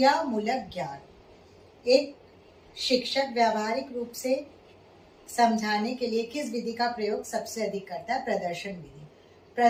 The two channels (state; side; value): identical; both; correlation 1.00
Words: ज्ञान। एक शिक्षक व्यावहारिक रूप से समझाने के लिए किस विधि का प्रयोग सबसे अधिक करता है? प्रदर्शन विधि।